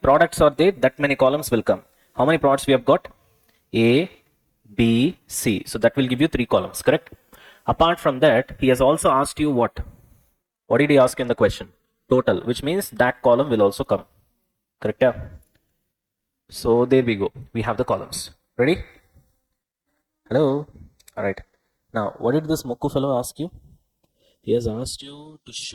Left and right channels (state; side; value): identical; both; correlation 1.00